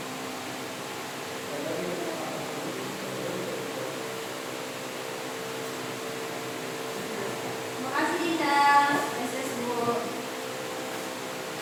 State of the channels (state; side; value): identical; both; correlation 1.00